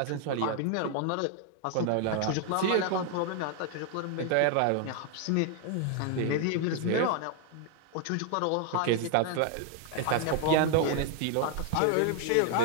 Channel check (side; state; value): both; different; correlation 0.00